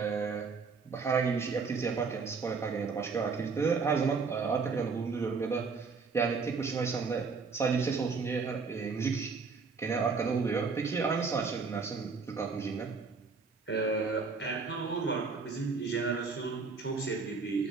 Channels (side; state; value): left; quieter; 4.8 dB